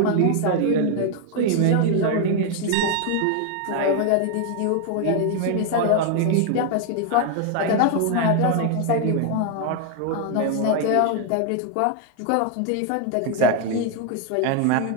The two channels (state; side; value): different; both; correlation 0.00